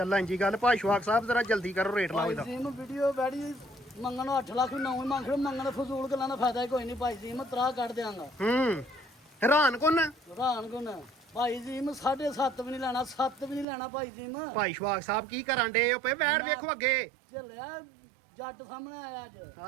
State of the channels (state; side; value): drops out; left; at 13.7 s